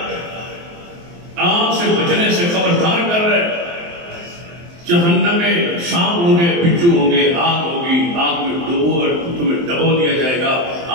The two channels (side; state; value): left; late; 23 ms